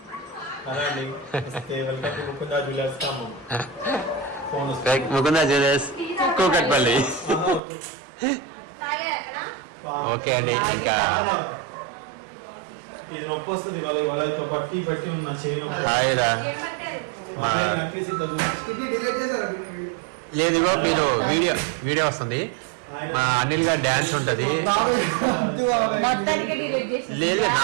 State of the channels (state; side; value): drops out; left; at 7.6 s